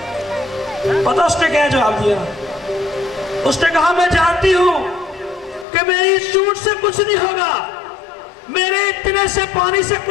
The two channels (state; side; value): drops out; right; at 5.7 s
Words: पता उसने क्या जवाब दिया? उसने कहा, मैं जानती हूं कि मेरी इस चोंच से कुछ नहीं होगा, मेरे इतने से पानी से